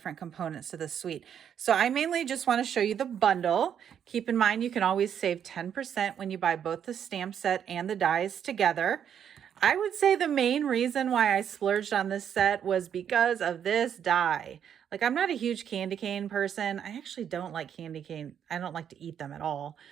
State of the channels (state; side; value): quieter; left; 8.7 dB